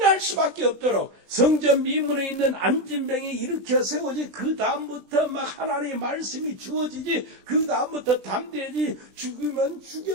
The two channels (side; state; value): left; late; 20 ms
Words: 수밖에 없도록 성전 미문에 있는 안진병이 일으켜 세워지, 그 다음부터 막 하나님의 말씀이 주어지지, 그 다음부터 담대해지, 죽으면